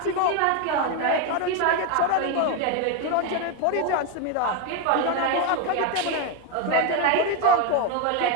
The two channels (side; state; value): both; different; correlation 0.02